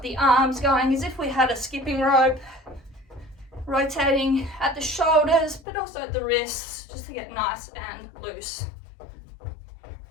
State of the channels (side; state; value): right; drops out; at 5.6 s